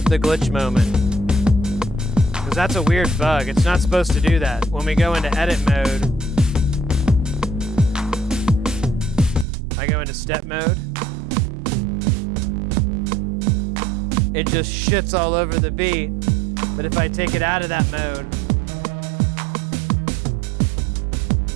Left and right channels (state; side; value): drops out; left; at 9.5 s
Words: the glitch moment. Because that's a weird bug. It's not supposed to do that. When we go into edit mode, I go into step mode. It just shits all over the beat. But if I take it out of that mode,